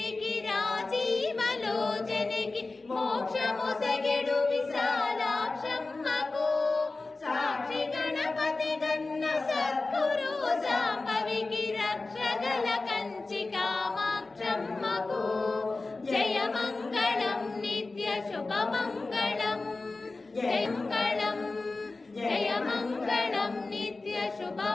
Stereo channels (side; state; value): right; quieter; 3.5 dB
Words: రాజీవలోచనికి మోక్షముసగెడు విశాలాక్షమ్మకు సాక్షి గణపతి గన్న సద్గురు సాంబవికి రక్షగల కంచి కామాక్షమ్మకు జయమంగళం నిత్య శుభమంగళం జయమంగళం జయమంగళం నిత్య